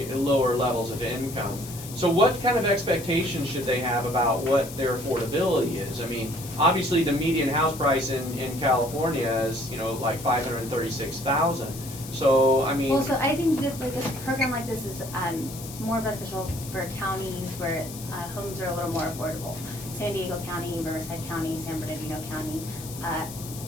levels of income. So what kind of expectations should they have about what their affordability is? I mean, obviously the median house price in California is, like $536,000. So, I mean... Well, so I think that this program like this is more beneficial for counties where homes are a little more affordable. San Diego County, Riverside County, San Bernardino County.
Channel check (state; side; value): noise; left; hiss, 13 dB below the sound